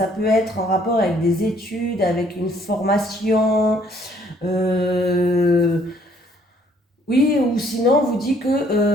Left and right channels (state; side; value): normal; both; correlation 0.63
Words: peut être en rapport avec des études, avec une formation, oui, ou sinon on vous dit